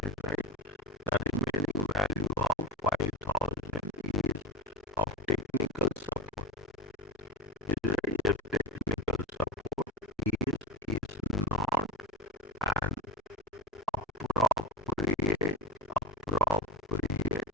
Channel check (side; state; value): both; normal; correlation 0.33